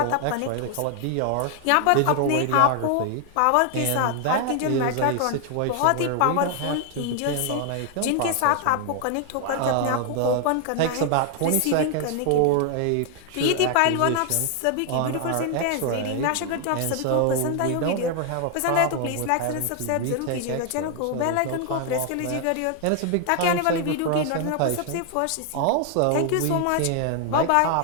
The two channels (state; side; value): different; both; correlation 0.00